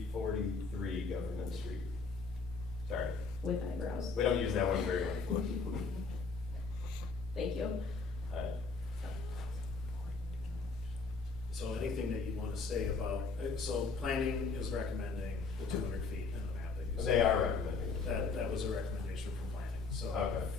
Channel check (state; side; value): quieter; right; 4.4 dB